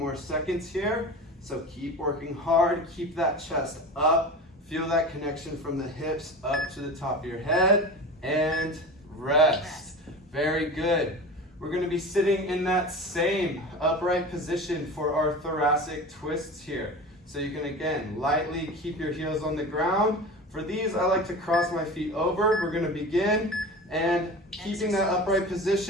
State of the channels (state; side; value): normal; both; correlation 0.32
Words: seconds here, so keep working hard, keep that chest up, feel that connection from the hips up to the top of your head, and rest. Very good. We're going to be sitting in that same upright position for our thoracic twists here. So you can, again, lightly keep your heels on the ground. For these, I like to cross my feet over. We're going to begin, and keeping that upright